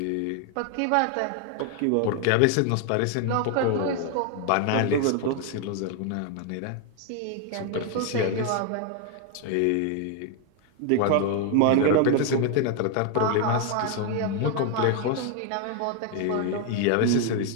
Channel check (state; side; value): different; both; correlation 0.01